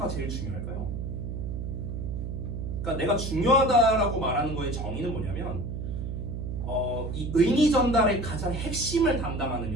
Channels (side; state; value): right; noise; hum, 5 dB below the sound